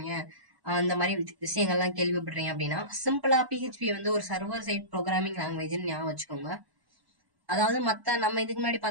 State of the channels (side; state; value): left; late; 1.1 ms